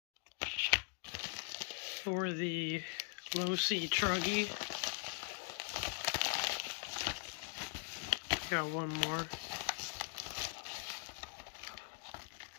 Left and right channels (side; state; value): right; silent; 50 dB below the other